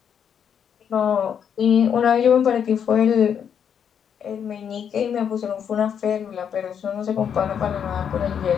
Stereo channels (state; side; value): quieter; right; 8.0 dB